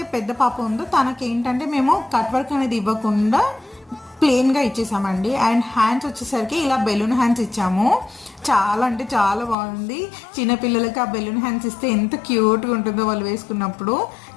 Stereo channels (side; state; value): right; drops out; at 9.6 s